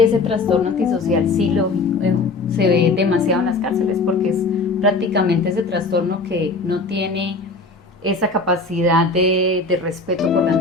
trastorno antisocial sí se ve demasiado en las cárceles, porque es prácticamente ese trastorno que no tiene esa capacidad de respeto por las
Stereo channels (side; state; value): right; quieter; 3.7 dB